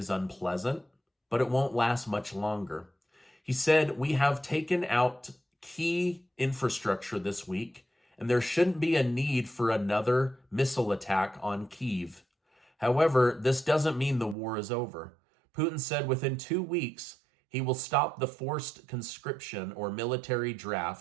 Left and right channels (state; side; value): drops out; left; at 14.4 s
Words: unpleasant, but it won't last much longer. He said, "We have taken out key infrastructure this week, and there shouldn't be a need for another missile attack on Kyiv. However, this doesn't mean the war is over." Putin said within 2 weeks, he will stop the forced conscription or military